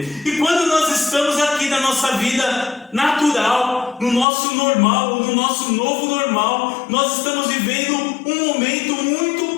E quando nós estamos aqui na nossa vida natural, no nosso normal, ou no nosso novo normal, nós estamos vivendo um momento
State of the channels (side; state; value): right; drops out; at 4.2 s